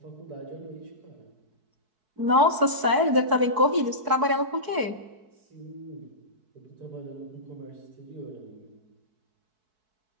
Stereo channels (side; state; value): left; late; 4.6 ms